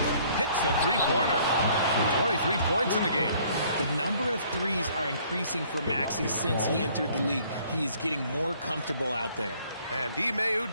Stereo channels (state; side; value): inverted; both; correlation -0.60